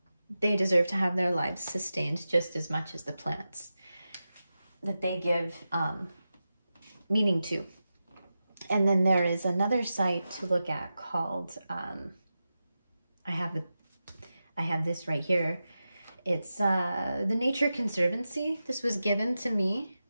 They deserve to have their lives sustained just as much as the plants that they give meaning to. And then there is another site to look at called, I have this right here. It's the Nature Conservancy. This was given to me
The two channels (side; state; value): both; inverted; correlation -0.92